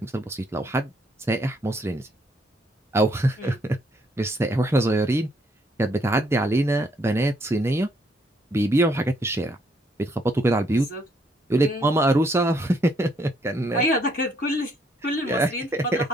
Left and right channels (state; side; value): normal; both; correlation 0.70